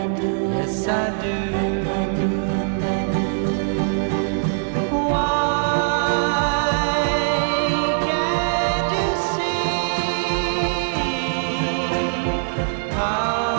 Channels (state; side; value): silent; left; digital silence